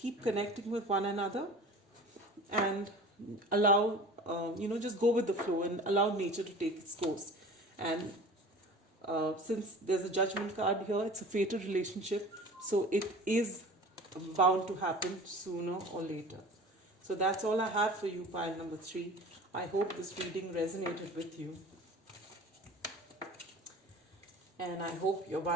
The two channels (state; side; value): normal; both; correlation 0.40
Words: connecting with one another, and allow, just go with the flow and allow nature to take its course. And since there's a judgment card here, it's a fated relationship, so it is bound to happen sooner or later. So that's all I have for you, pile number 3. I hope this reading resonated with you. And I hope your